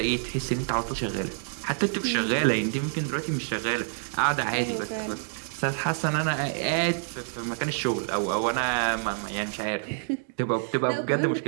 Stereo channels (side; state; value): left; silent; digital silence